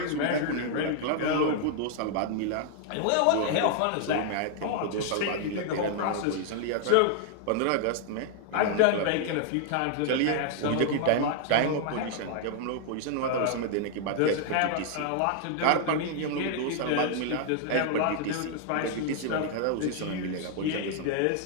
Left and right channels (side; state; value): both; different; correlation 0.00